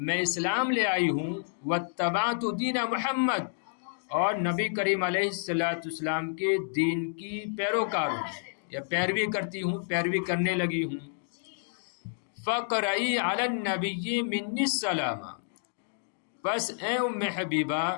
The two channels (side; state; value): right; silent; digital silence